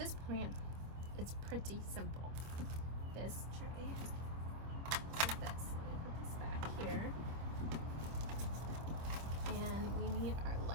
plant, it's pretty simple. This tray is this. Let me put this back here. And we need our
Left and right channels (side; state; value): left; late; 25 ms